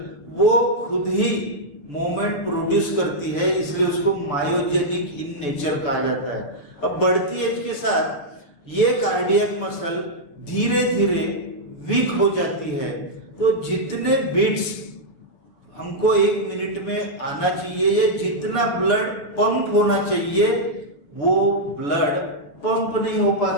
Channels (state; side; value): late; right; 6.8 ms